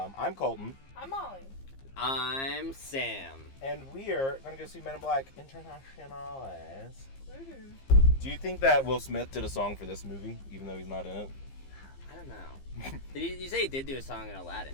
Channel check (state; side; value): late; right; 15 ms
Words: I'm Colton. I'm Molly. I'm Sam. And we are going to go see Men in Black Internationales. Woohoo. Do you think that Will Smith did a song for this movie, even though he's not in it? I don't know. You say he did do a song in Aladdin,